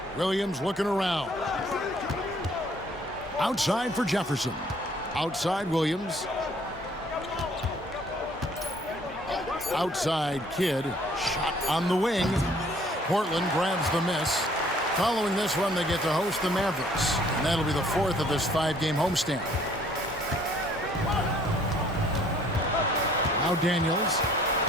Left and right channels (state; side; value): normal; both; correlation 0.59